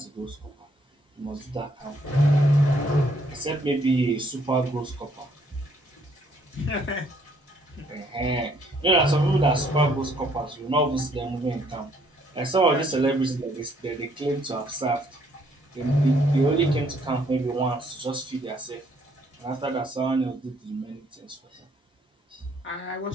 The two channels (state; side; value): normal; both; correlation 0.67